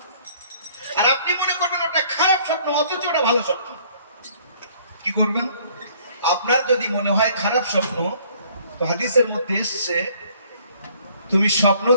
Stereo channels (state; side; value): inverted; both; correlation -0.59